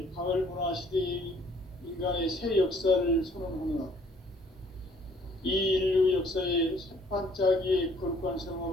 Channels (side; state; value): both; normal; correlation 0.60